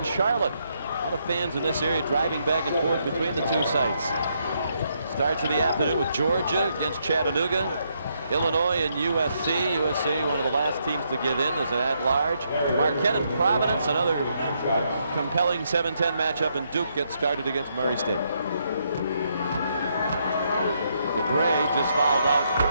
Charlotte. A lot of fans in this area driving back and forth between the two sites. Starts in the afternoon with Georgia against Chattanooga. Illinois and USC. USC, one of the last teams to get in as an at-large. Marquette and Providence, another compelling 7-10 matchup, and Duke gets started against Murray State. DeGray just fouled out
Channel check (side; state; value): both; inverted; correlation -0.76